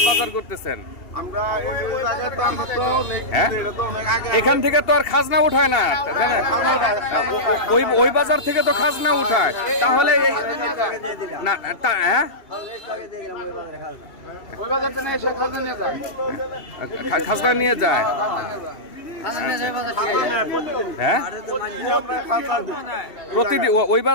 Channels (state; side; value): late; right; 2.8 ms